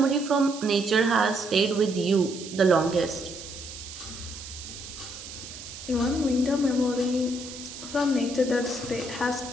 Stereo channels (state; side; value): noise; right; hiss, 12 dB below the sound